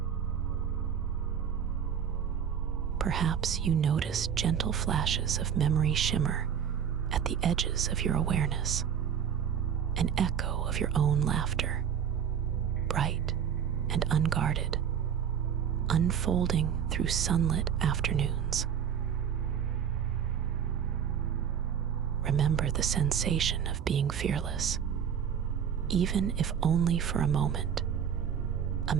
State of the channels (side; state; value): left; quieter; 8.2 dB